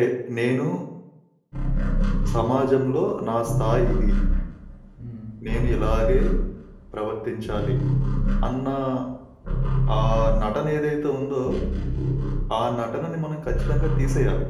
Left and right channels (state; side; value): identical; both; correlation 1.00